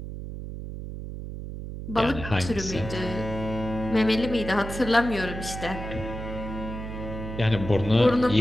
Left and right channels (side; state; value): right; noise; hum, 8 dB below the sound